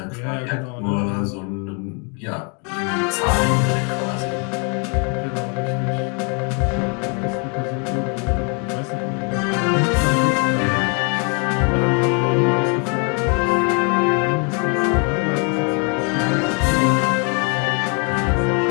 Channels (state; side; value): quieter; right; 36.4 dB